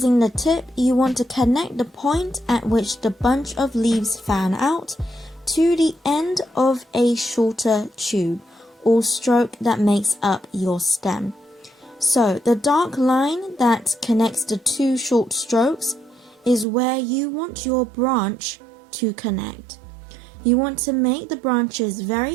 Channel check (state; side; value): drops out; left; at 16.7 s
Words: the tip, you want to connect the point at which the bunch of leaves fan out to the end of a shorter tube or stroke that makes up your stem. So, the dark line that connects the two short strokes is where you want your branch to connect. You want to make the branches